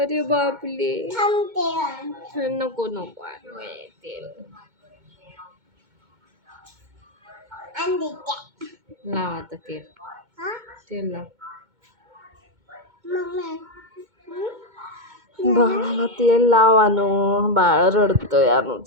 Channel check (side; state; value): left; late; 2.2 ms